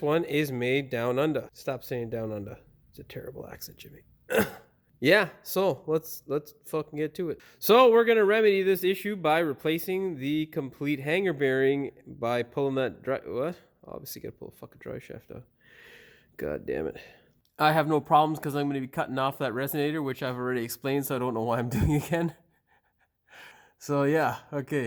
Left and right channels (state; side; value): identical; both; correlation 1.00